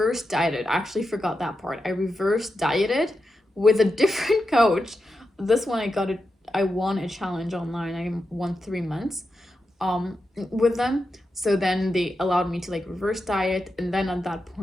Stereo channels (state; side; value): normal; both; correlation 0.88